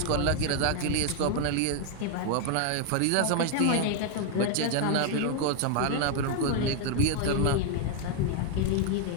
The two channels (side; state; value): both; different; correlation 0.00